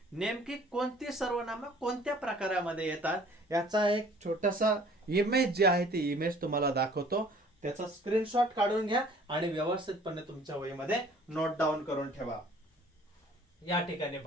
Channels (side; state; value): both; normal; correlation 0.53